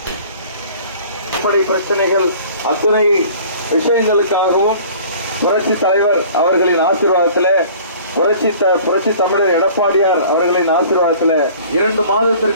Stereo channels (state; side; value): inverted; both; correlation -0.48